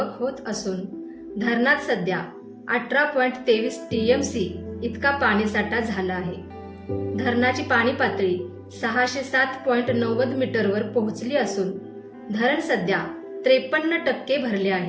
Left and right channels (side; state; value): both; identical; correlation 1.00